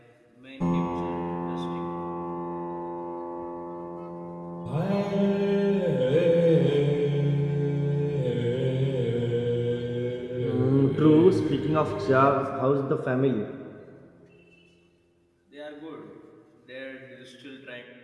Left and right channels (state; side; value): identical; both; correlation 1.00